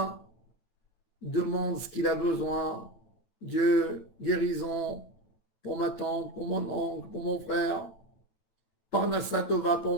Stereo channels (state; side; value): late; right; 9.0 ms